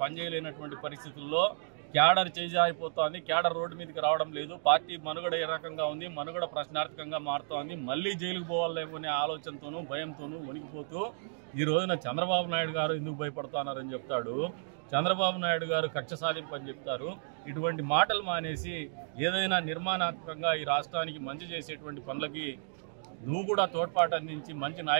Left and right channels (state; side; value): silent; left; digital silence